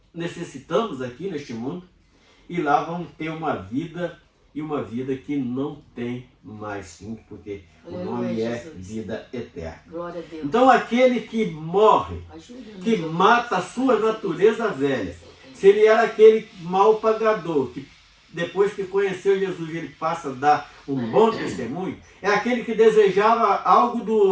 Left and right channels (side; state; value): both; identical; correlation 1.00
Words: necessitamos aqui neste mundo, e lá vamos ter uma vida, e uma vida que não tem mais fim, porque o nome é vida eterna. Glória a Deus. Então aquele que morre, que mata a sua natureza velha, se ele era aquele mau pagador, que depois que conheceu Jesus ele passa a dar um bom testemunho, é aquele que desejava algo do